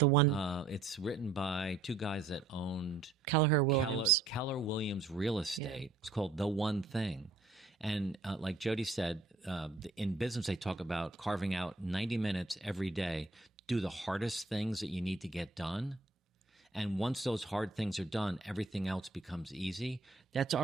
one. It's written by 2 guys that owned Keller Williams Real Estate. Yeah. It's called The One Thing. And like Jody said, in business, they talk about carving out 90 minutes every day, do the hardest things that you need to get done. And once those hard things are done, everything else becomes easy. That's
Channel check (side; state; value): left; quieter; 3.7 dB